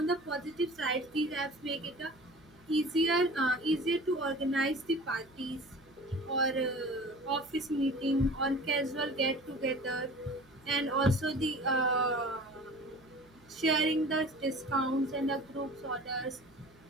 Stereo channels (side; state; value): right; noise; hum, 30 dB below the sound